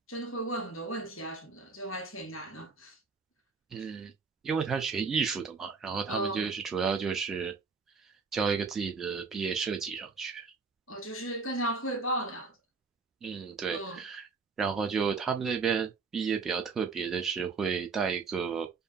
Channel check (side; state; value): left; quieter; 4.8 dB